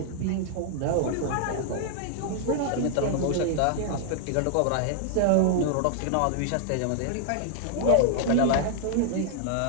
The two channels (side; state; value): both; different; correlation -0.01